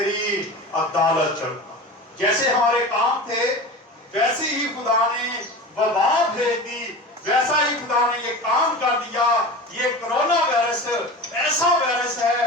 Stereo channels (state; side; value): normal; both; correlation 0.32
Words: عدالت کروں گا. جیسے ہمارے کام تھے ویسے ہی خدا نے وبا بھیج دی، ویسا ہی خدا نے یہ کام کر دیا. یہ کرونا وائرس ایسا وائرس ہے